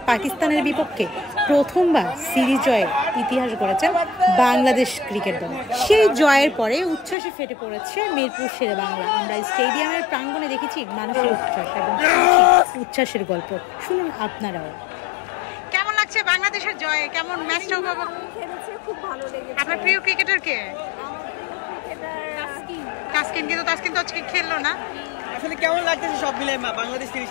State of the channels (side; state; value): right; drops out; at 7.2 s